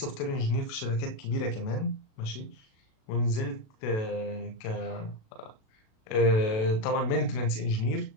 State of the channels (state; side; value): late; right; 37 ms